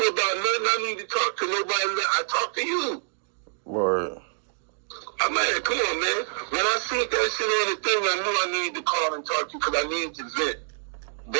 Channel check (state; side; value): silent; left; digital silence